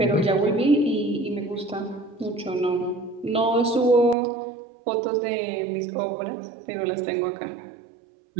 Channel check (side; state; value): left; drops out; at 4.2 s